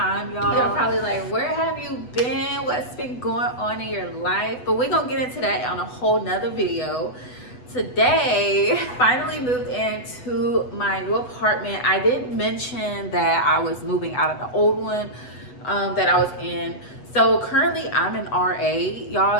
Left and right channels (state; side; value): late; right; 8.1 ms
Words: y'all. You're probably like, where have you been? What's been going on in your life? But we're gonna get into that on a whole nother video. Today, finally moved into my new apartment. I did mention that I was moving out of the old one that I was in. So currently I'm an RA,